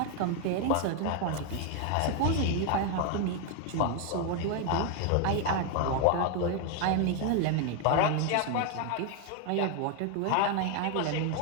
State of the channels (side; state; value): both; different; correlation 0.01